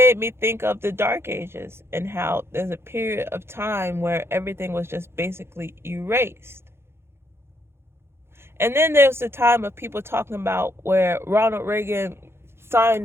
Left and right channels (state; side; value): late; left; 0.12 ms